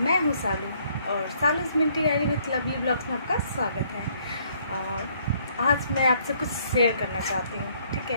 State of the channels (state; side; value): inverted; both; correlation -0.65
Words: हूँ सालू और Salu's minty diary with lovely blogs में आपका स्वागत है। आज मैं आपसे कुछ शेयर करना चाहती हूँ। ठीक